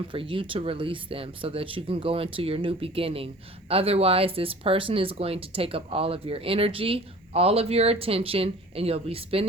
for you to release them so that you can go into your new beginning. Otherwise, this person is going to take up all of your energy, all of your attention, and you'll be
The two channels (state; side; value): normal; both; correlation 0.45